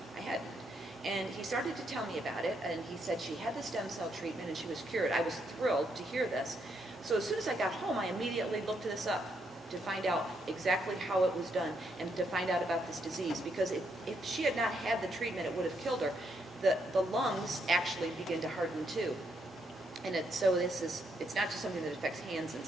I hadn't. And he started to tell me about it, and he said she had the stem cell treatment and she was cured. I was thrilled to hear this. So as soon as I got home, I immediately looked this up to find out exactly how it was done and to find out about this disease, because if she had not had the treatment, it would have killed her. The lungs actually begin to harden too. And it's not just something that affects hands and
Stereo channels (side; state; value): both; normal; correlation 0.77